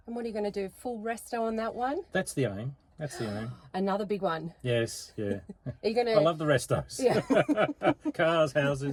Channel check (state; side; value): identical; both; correlation 1.00